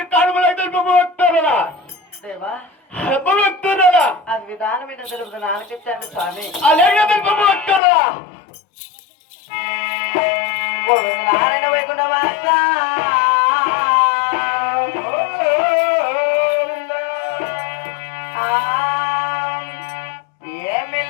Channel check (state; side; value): drops out; right; at 7.8 s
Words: కానుమలాగా భక్తురాలా దేవా భక్తురాలా అది విధానమైన తెలుపు నాన్నకిచ్చాను స్వామి అలాగే భక్తురాలా గోవింద నారాయణ వైకుంఠ వాస